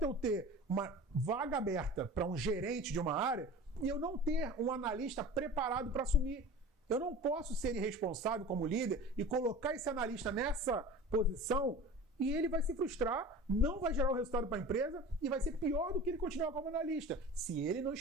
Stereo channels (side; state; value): both; normal; correlation 0.37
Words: eu ter uma vaga aberta para um gerente de uma área e eu não ter um analista preparado para assumir. Eu não posso ser irresponsável como líder e colocar esse analista nessa posição e ele vai se frustrar, não vai gerar o resultado para a empresa e vai ser pior do que ele continuar como analista, se ele não